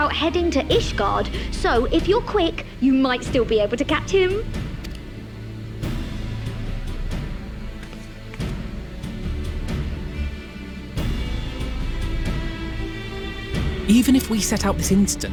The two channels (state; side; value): identical; both; correlation 1.00